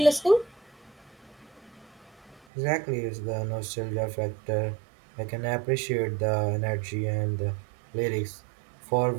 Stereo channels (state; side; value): drops out; left; at 2.5 s